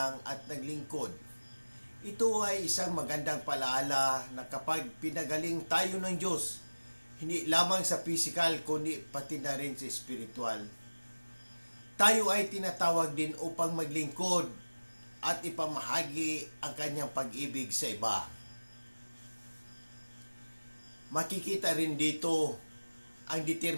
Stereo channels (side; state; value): both; inverted; correlation -1.00